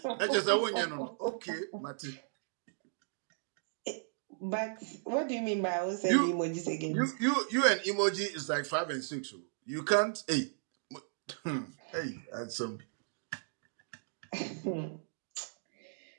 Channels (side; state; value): left; silent; digital silence